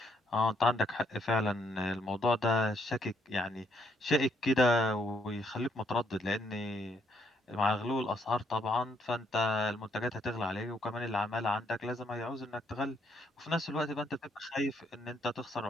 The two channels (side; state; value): both; normal; correlation 0.71